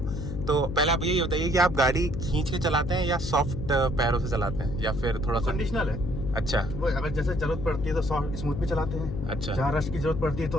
तो पहले आप ये बताइए कि आप गाड़ी खींच के चलाते हैं या सॉफ्ट पैरों से चलाते हैं या फिर थोड़ा सा कंडीशनल है? अच्छा, वो अगर जैसे जरूरत पड़ती है तो सॉफ्ट स्मूथ भी चलाते हैं। अच्छा। जहाँ रश की जरूरत पड़ती है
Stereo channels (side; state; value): left; noise; hum, 5 dB below the sound